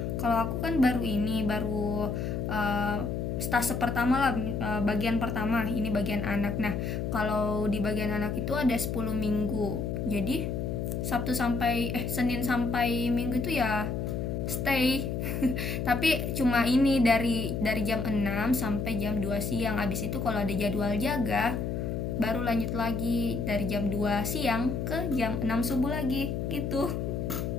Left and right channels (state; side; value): noise; left; hum, 2 dB below the sound